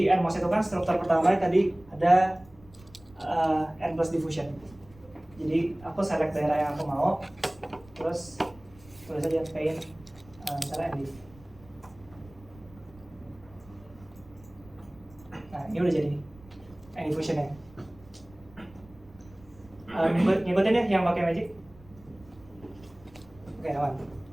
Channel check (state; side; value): noise; right; rumble, 24 dB below the sound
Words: NMOS itu kan struktur pertama tadi ada N plus diffusion. Jadi aku select daerah yang aku mau, terus tulis aja paint misalnya ND. Nah ini udah jadi N diffusionnya. Ngikutin ya yang pakai magic. Oke aman.